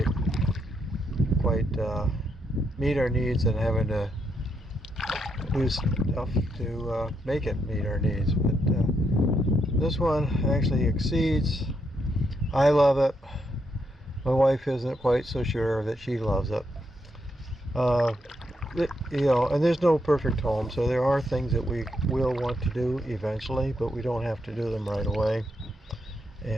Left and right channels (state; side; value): normal; both; correlation 0.79